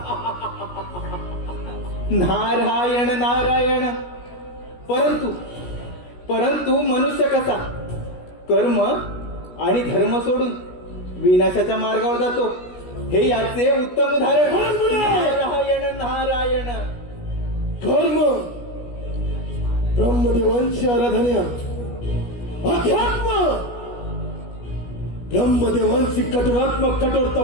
नारायण नारायण. परंतु मनुष्य कसा कर्म आणि धर्म सोडून विनाशाच्या मार्गावर जातो हे याचे उत्तम उदाहरण. नारायण नारायण. कर्म, ब्रह्मदेवांची आराधना, अध्यात्म, ब्रह्मदेवांची कठोरात्मक कठोर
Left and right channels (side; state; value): right; late; 17 ms